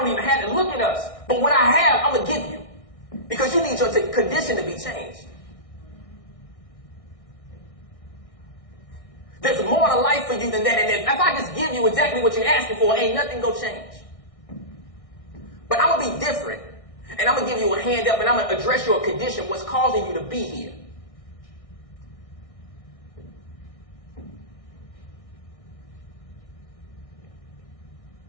even have to look at us. But what I have, I'm going to give you, because you need your condition to be changed. There's more to life for you than that, and if I just give you exactly what you're asking for, ain't nothing going to change. But I'm going to be different, and I'm going to give you a hand up, and I'm going to address your condition, what's causing you to be here.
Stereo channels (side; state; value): right; late; 1.6 ms